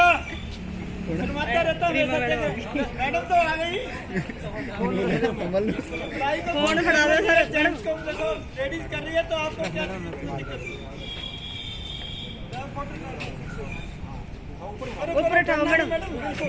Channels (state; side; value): identical; both; correlation 1.00